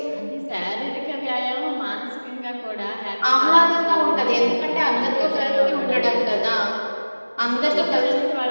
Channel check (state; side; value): inverted; both; correlation -1.00